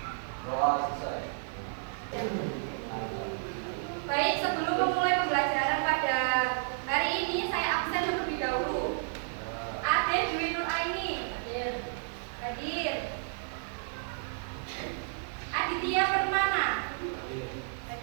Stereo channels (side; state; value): left; silent; 57 dB below the other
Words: Doa selesai. Baik, sebelum memulai pembelajaran pada hari ini, saya absen terlebih dahulu. Ade Dwi Nur Aini hadir. Aditya Permana